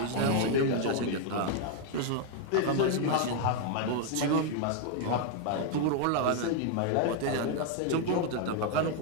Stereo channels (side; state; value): both; different; correlation 0.00